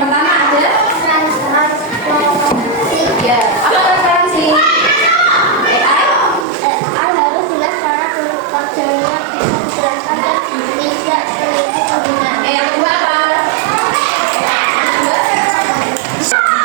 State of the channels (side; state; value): left; drops out; at 6.5 s